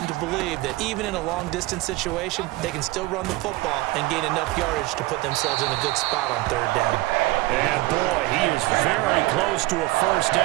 to believe that even in a long-distance situation, they can still run the football and gain enough yardage to put themselves in a good spot on 3rd down. And boy, he is very close to a 1st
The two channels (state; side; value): quieter; left; 19.8 dB